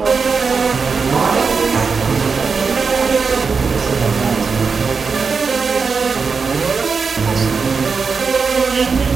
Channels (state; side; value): quieter; left; 5.2 dB